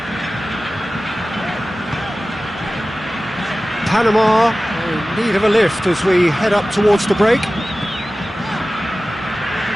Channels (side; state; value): both; normal; correlation 0.96